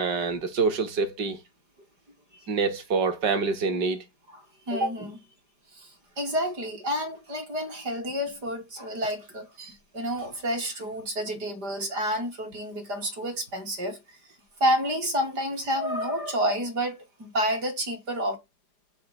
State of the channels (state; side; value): late; left; 5.0 ms